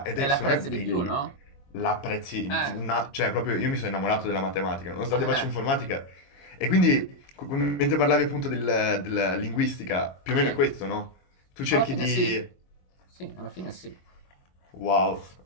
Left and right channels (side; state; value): right; late; 22 ms